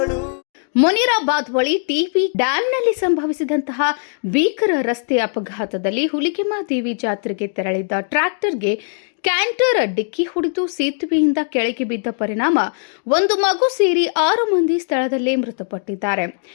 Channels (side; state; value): right; silent; digital silence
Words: ಮುನಿರಾಬಾದ್ ಬಳಿ ಟಿಬಿ ಡ್ಯಾಂನಲ್ಲಿ ಸಂಭವಿಸಿದಂತಹ ಭೀಕರ ರಸ್ತೆ ಅಪಘಾತದಲ್ಲಿ ಹುಲಿಗೆಮ್ಮದೇವಿ ಜಾತ್ರೆಗೆ ತೆರಳಿದ್ದ ಟ್ರ್ಯಾಕ್ಟರ್ಗೆ ಕ್ಯಾಂಟರ್ ಡಿಕ್ಕಿ ಹೊಡೆದು ಸೇತುವೆಯಿಂದ ಕೆಳಗೆ ಬಿದ್ದ ಪರಿಣಾಮ ಒಂದು ಮಗು ಸೇರಿ 6 ಮಂದಿ ಸ್ಥಳದಲ್ಲೇ ಮೃತಪಟ್ಟಿದ್ದಾರೆ.